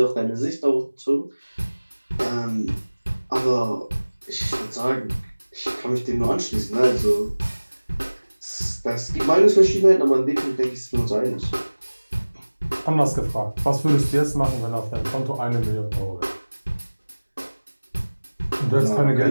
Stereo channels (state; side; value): inverted; both; correlation -1.00